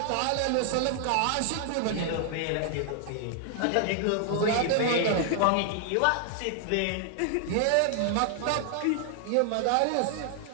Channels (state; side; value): different; both; correlation 0.00